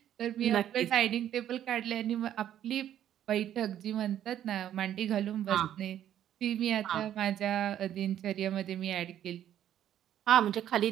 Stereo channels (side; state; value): left; quieter; 11.0 dB